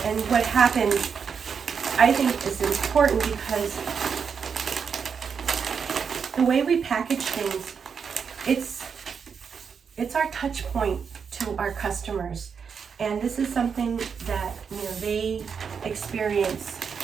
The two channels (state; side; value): quieter; left; 6.4 dB